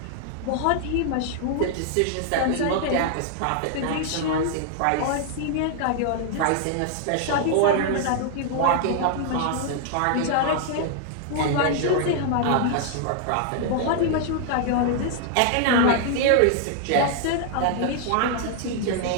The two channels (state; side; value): different; both; correlation 0.00